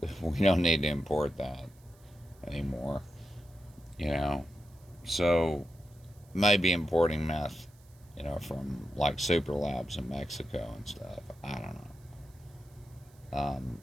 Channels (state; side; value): noise; right; hiss, 30 dB below the sound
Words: We don't need to import that anymore, So, maybe importing meth, from like super labs in Mexico and stuff. I don't know.